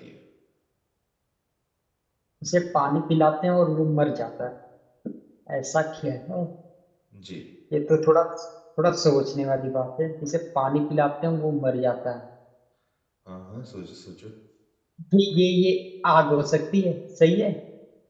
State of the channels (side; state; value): both; identical; correlation 1.00